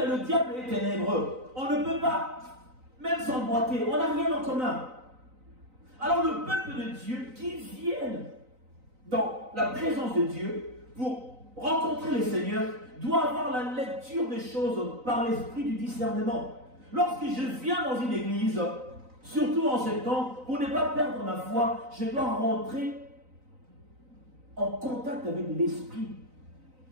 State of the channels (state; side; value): late; left; 3.9 ms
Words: diable est ténébreux. On ne peut pas même s'emboîter, on n'a rien en commun. Alors le peuple de Dieu qui vient dans la présence de Dieu pour rencontrer le Seigneur doit avoir la lecture des choses par l'esprit du discernement. Lorsque je viens dans une église, surtout en ce temps, pour ne pas perdre ma foi, je dois rentrer en contact avec l'esprit